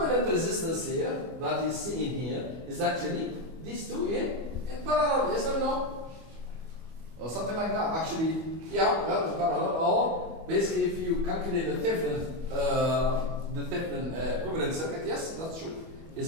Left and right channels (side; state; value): left; late; 25 ms